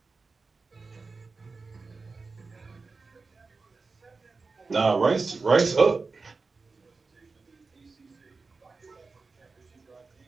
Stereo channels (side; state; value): left; quieter; 4.1 dB